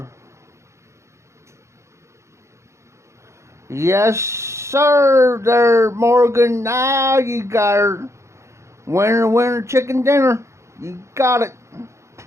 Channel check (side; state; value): left; late; 0.14 ms